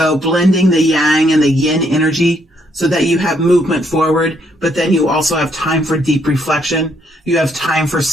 blending the yang and the yin energy so that you have movement forward, but then you also have time for deep reflection. You have time for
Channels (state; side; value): normal; both; correlation 0.72